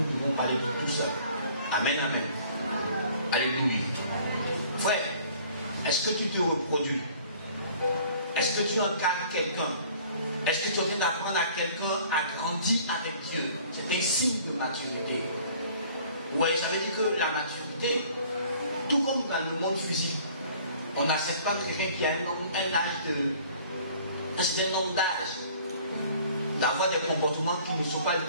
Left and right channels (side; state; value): both; inverted; correlation -0.53